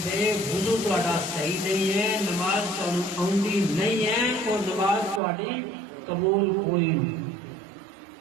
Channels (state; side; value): drops out; left; at 5.2 s